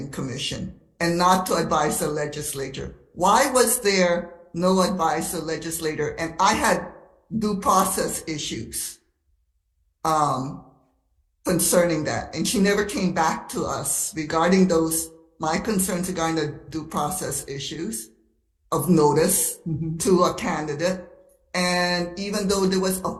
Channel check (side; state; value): both; identical; correlation 1.00